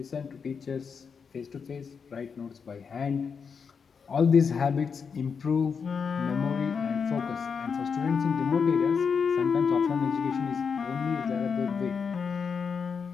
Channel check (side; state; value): right; quieter; 6.0 dB